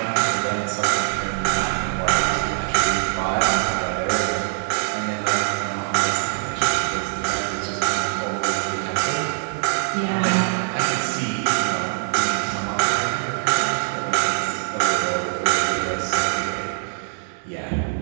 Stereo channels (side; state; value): left; silent; digital silence